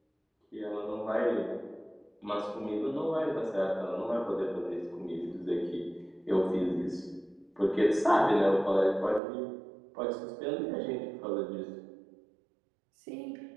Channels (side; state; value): left; drops out; at 9.2 s